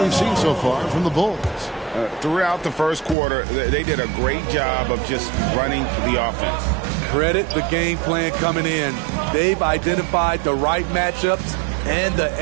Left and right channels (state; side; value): drops out; left; at 3.2 s